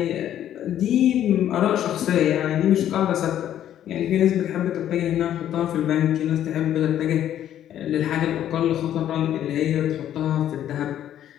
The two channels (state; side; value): quieter; right; 11.1 dB